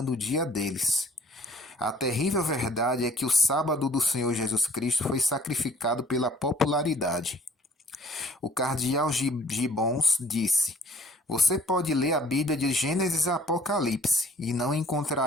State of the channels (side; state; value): both; normal; correlation 0.57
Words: o dia deles. A terrível verdade é que o sábado do Senhor Jesus Cristo foi sacrificado pela popularidade. O cardeal Gibbons disse: você pode ler a Bíblia de Gênesis a Apocalipse e não